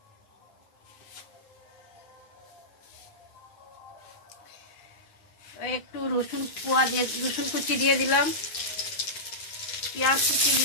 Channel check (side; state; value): right; late; 9.6 ms